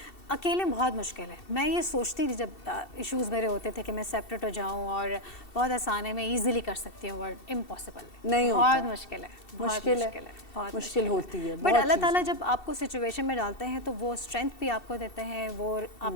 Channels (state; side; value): late; right; 2.7 ms